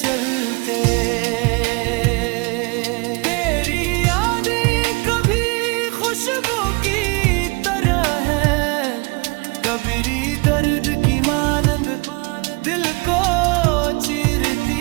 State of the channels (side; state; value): left; quieter; 28.6 dB